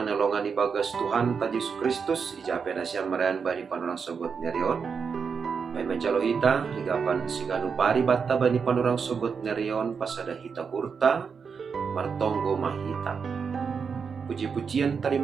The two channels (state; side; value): quieter; left; 5.9 dB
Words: nalongan ibagas Tuhan ta Yesus Kristus ijape nasyam marayan bani panurang sogot nerion. May mencalo hita higapan siganu pari batta bani panurang sogot nerion pasada hita hurta martonggo mahita. Puji-pujian